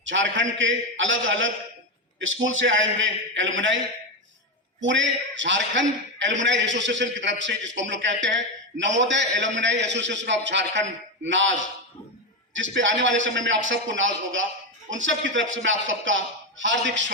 झारखंड के अलग अलग स्कूल से आए हुए एलुमनाई, पूरे झारखंड एलुमनाई एसोसिएशन की तरफ से, जिसको हम लोग कहते हैं Navodaya alumni association of Jharkhand नाज, जिस पे आने वाले समय में आप सबको नाज होगा, उन सब की तरफ से मैं आप सबका हार्दिक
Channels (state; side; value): normal; both; correlation 0.11